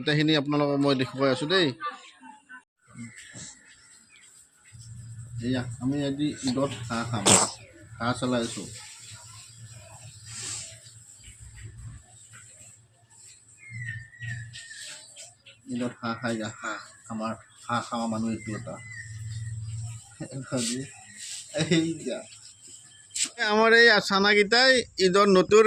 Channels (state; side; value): identical; both; correlation 1.00